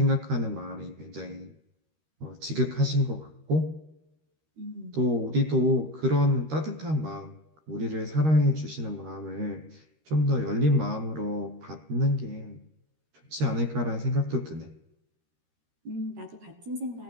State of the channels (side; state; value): left; late; 13 ms